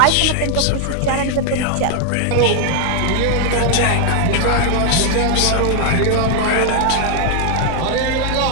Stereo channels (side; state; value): both; different; correlation 0.00